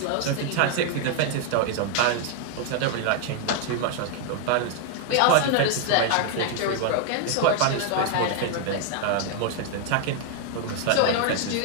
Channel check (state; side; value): different; both; correlation 0.00